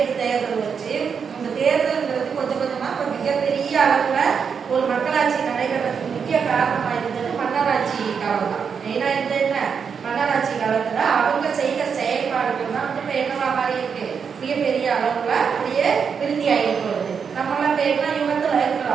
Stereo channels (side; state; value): left; quieter; 6.4 dB